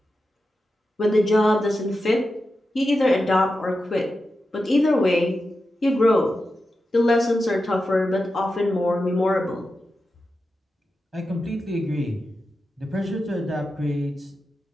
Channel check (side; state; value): both; normal; correlation 0.90